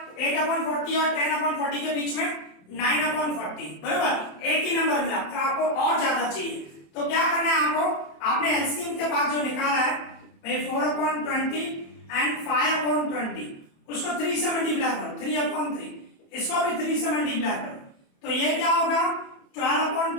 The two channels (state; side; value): late; right; 27 ms